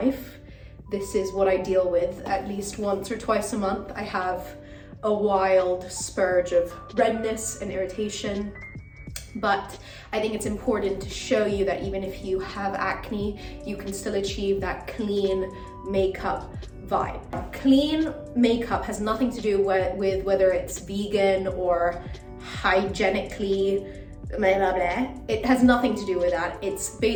This is what I deal with at least once or twice a month. I have a wild spurge of redness and irritation. But I think it's important to show you that even if you have acne, you can still achieve that clean makeup vibe. Clean makeup has nothing to do with whether it's vegan or hygienically blah blah blah. It has nothing to do with that. It's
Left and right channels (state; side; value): identical; both; correlation 1.00